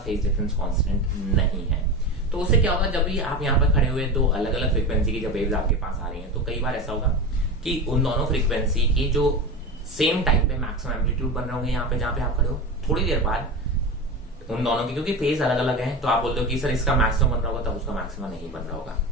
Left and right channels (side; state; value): both; normal; correlation 0.25